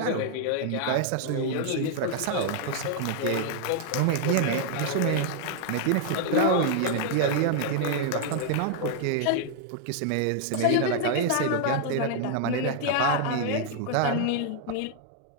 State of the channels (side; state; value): both; different; correlation 0.00